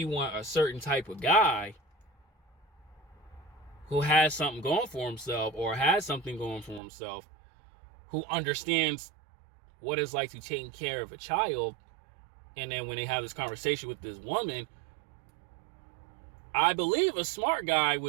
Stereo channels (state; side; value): drops out; left; at 6.8 s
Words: want a certain type of guy who has something going for himself or has something going for himself, who understands what it's like to take care of a child, and then when they have this conversation with this woman, I believe a smart guy